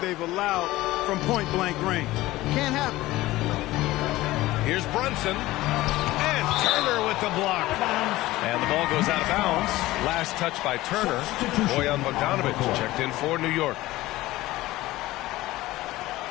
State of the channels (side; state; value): right; quieter; 17.6 dB